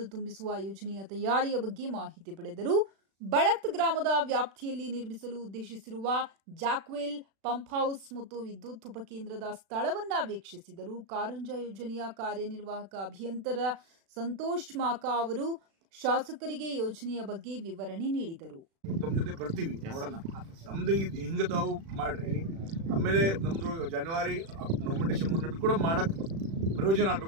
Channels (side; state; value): left; late; 36 ms